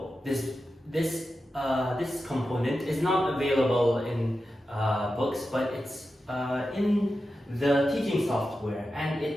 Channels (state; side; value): normal; both; correlation 0.91